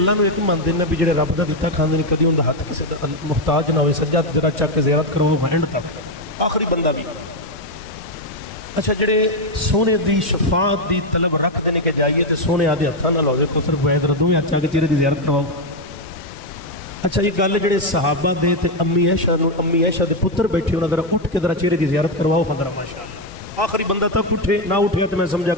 نو ایک منتے ہیں بھی جڑے رب دا دتا کھاندے نے کدی اندا ہاتھ کسے دا محتاج نہ ہوئے سجا ذرا چک کے زیارت کرو اینڈ تک آخری بندہ بھی اچھا جڑے سونے دی شفاعت دی طلب رکھ دینے کے جائیے تے سونے آدھے ہاتھاں نال ہوے کو صرف وید ردوں میں اچھا کے چہرے دی زیارت کرواؤ اچھا یہ گل جڑے صحابہ دے تے امی عائشہ دے پتر بیٹھے انہاں ذرا اٹھ کے ذرا چہرے دی زیارت کرواؤ ذرا ماشاءاللہ آخری بندہ تک اٹھے نہ اٹھیا تے میں سمجھا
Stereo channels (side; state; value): both; normal; correlation 0.05